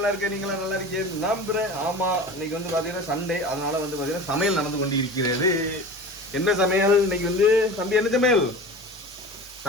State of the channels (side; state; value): both; normal; correlation 0.34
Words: இருக்கேன். நீங்களும் நல்லா இருக்கீங்க நம்புறேன். ஆமா, இன்னைக்கு வந்து பாத்தீங்கன்னா சண்டே, அதனால வந்து பாத்தீங்கன்னா சமையல் நடந்து கொண்டு இருக்கிறது. என்ன சமையல் இன்னைக்கு வந்து தம்பி? என்ன சமையல்?